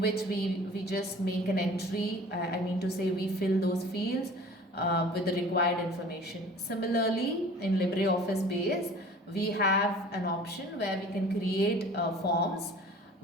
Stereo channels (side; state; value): both; normal; correlation 0.45